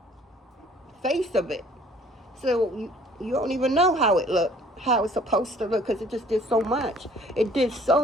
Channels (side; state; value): both; normal; correlation 0.55